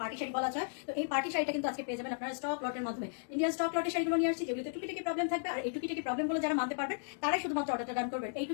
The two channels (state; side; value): silent; right; digital silence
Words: পার্টি শাড়ি বলা যায়। তো এই পার্টি শাড়িটা কিন্তু আজকে পেয়ে যাবেন আপনারা স্টক লটের মাধ্যমে। ইন্ডিয়ান স্টক লটের শাড়িগুলো নিয়ে আসছি, যেগুলোতে টুকিটাকি প্রবলেম থাকবে। আর এই টুকিটাকি প্রবলেমগুলো যারা মানতে পারবেন তারাই শুধুমাত্র অর্ডারটা ডান করবেন। এই